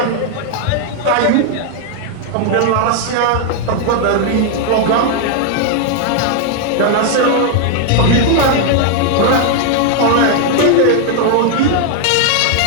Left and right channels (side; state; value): both; different; correlation 0.00